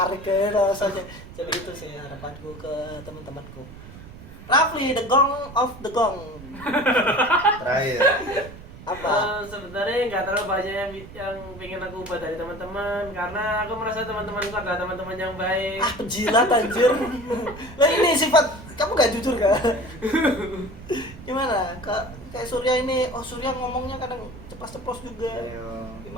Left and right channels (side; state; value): right; noise; rumble, 16 dB below the sound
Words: ke rasanya. Jadi itu sih harapanku ke teman-temanku. Rafli, the gong of the gong. Terakhir. Apa? Sebenarnya nggak terlalu banyak yang pengen aku ubah dari teman-teman, karena aku merasa teman-temanku adalah teman-teman yang baik. Penjilat anjir. Lah ini sifat kamu gak jujur kan? Gimana? Kayak Surya ini, Surya ngomongnya kadang ceplos-ceplos juga. Ayo.